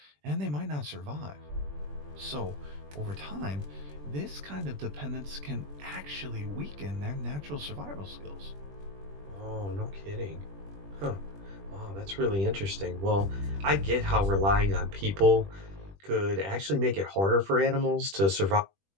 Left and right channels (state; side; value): late; left; 20 ms